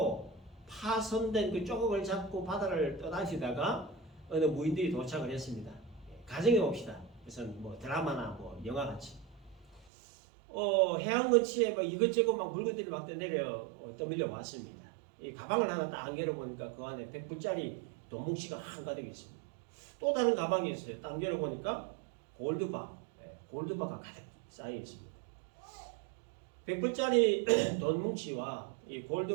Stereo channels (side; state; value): left; drops out; at 9.9 s